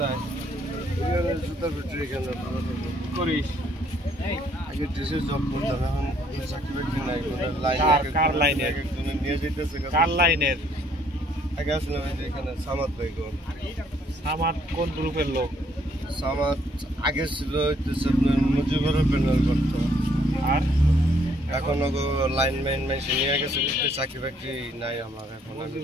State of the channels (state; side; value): normal; both; correlation 0.66